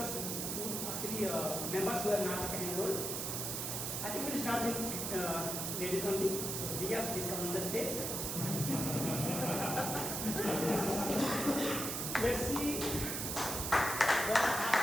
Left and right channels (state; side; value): noise; right; hiss, 2 dB below the sound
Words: actually members who have not taken enrolled. I think we'll start with ladies only. So Diya, please come on the stage. Let's see what